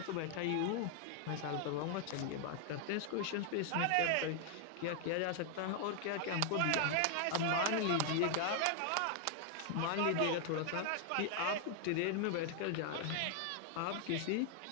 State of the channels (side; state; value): both; different; correlation 0.00